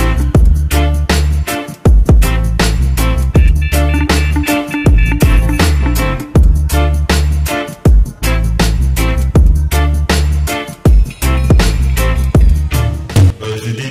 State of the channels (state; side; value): identical; both; correlation 1.00